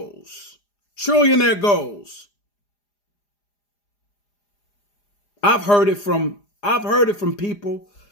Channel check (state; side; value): late; right; 4.9 ms